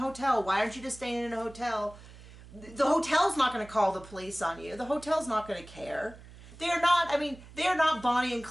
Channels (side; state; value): right; noise; hum, 19 dB below the sound